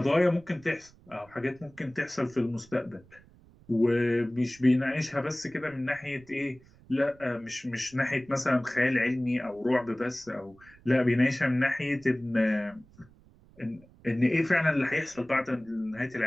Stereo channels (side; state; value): right; noise; rumble, 26 dB below the sound